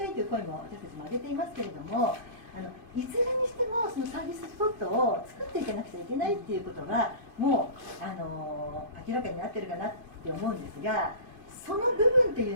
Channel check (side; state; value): left; late; 2.5 ms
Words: いという声も私たちも挙げていますけれども、いずれにしてもそのサービススポットを作っていかなくちゃいけないっていうことがもう明らかになってるかなって思うんですが、その部分とい